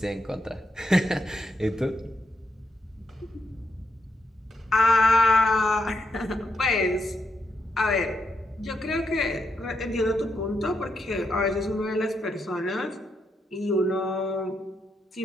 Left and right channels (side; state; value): both; normal; correlation 0.81